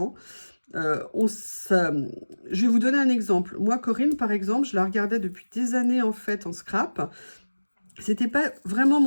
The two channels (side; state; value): both; inverted; correlation -1.00